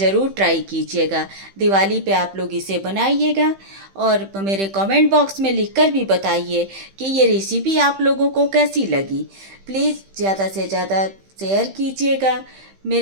ट्राई कीजिएगा। दिवाली पे आप लोग इसे बनाइएगा, और मेरे कमेंट बॉक्स में लिखकर भी बताइए कि ये रेसिपी आप लोगों को कैसी लगी। प्लीज़ ज़्यादा से ज़्यादा शेयर कीजिएगा,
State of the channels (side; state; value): left; late; 15 ms